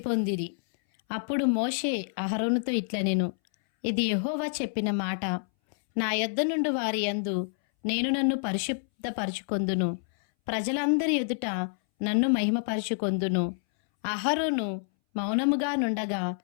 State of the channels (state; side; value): silent; right; 59 dB below the other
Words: పొందిరి. అప్పుడు మోషే అహరోనుతో ఇట్లనెను, ఇది యెహోవా చెప్పిన మాట, నా యొద్ద నుండి వారి యందు నేను నన్ను పరిశుద్ధపరచుకొందును, ప్రజలందరి ఎదుట నన్ను మహిమపరచుకొందును. అహరోను మౌనముగా నుండగా